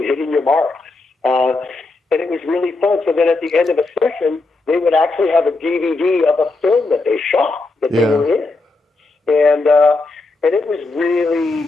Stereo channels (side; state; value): right; quieter; 3.4 dB